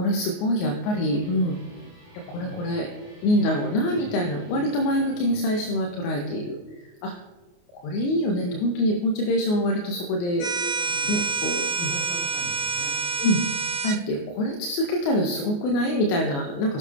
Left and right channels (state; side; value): late; right; 28 ms